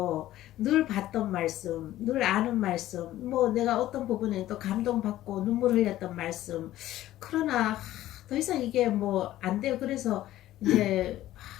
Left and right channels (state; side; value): quieter; right; 14.4 dB